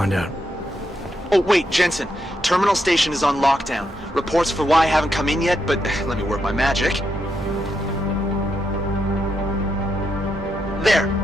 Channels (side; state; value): both; normal; correlation 0.81